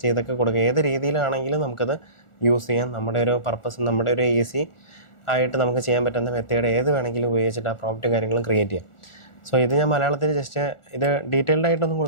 ചെയ്തൊക്കെ കൊടുക്കുക. ഏത് രീതിയിലാണെങ്കിലും നമുക്കത് യൂസ് ചെയ്യാം. നമ്മുടെ ഒരു പർപ്പസ്, നമ്മുടെ ഒരു ഈസി ആയിട്ട് നമുക്ക് ചെയ്യാൻ പറ്റുന്ന മെത്തേഡ് ഏത് വേണമെങ്കിലും ഉപയോഗിച്ചിട്ട് ആ പ്രോംപ്റ്റ് കാര്യങ്ങളും ക്രിയേറ്റ് ചെയ്യാം. ഇത് ഞാൻ മലയാളത്തിൽ ജസ്റ്റ് ഇത് ഡീറ്റെയിൽഡ് ആയിട്ടൊന്നും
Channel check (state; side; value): late; right; 1.4 ms